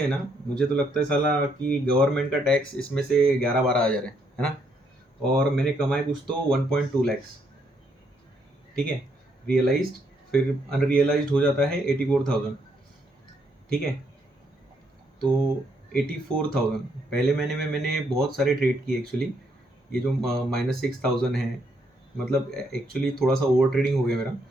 ना, मुझे तो लगता है साला कि गवर्नमेंट का टैक्स इसमें से 11-12 हज़ार है ना। और मैंने कमाए कुछ तो 1.2 लैक्स। ठीक है, रियलाइज्ड। फिर अनरियलाइज्ड हो जाता है 84,000। ठीक है, तो 84,000 पहले महीने में मैंने बहुत सारे ट्रेड किए एक्चुअली। ये जो -6,000 है, मतलब एक्चुअली थोड़ा सा ओवर ट्रेडिंग हो गया मेरा।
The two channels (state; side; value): normal; both; correlation 0.73